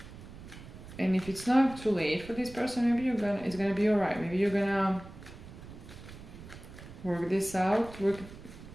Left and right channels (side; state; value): right; noise; rumble, 15 dB below the sound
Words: And if it's not too late for this person, maybe it's gonna be alright. Maybe you're gonna work this out, work